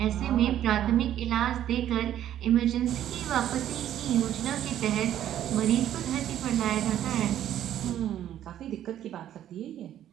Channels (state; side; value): quieter; left; 11.4 dB